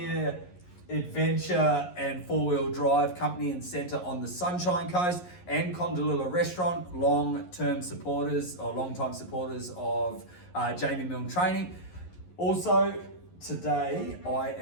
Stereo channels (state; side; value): late; right; 11 ms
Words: adventure and four-wheel drive company and centre on the Sunshine Coast, and Condalilla Restaurant, long-time supporters of Jamie Milne Training. Also, today I